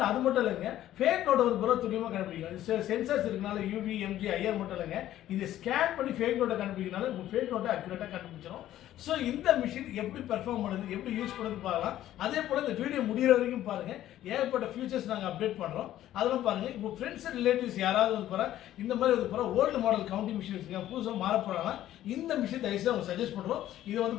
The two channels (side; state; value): right; quieter; 13.0 dB